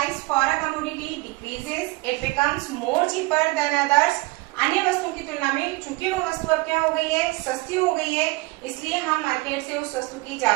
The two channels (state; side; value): quieter; left; 23.0 dB